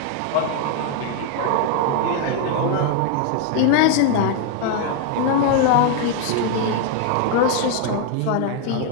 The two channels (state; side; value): different; both; correlation 0.00